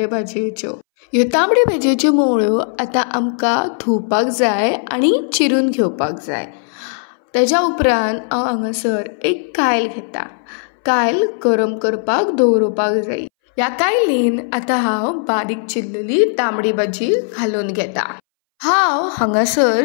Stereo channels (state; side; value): silent; right; 65 dB below the other